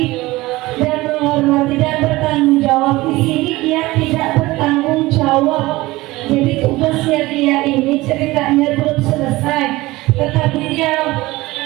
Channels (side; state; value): left; quieter; 19.7 dB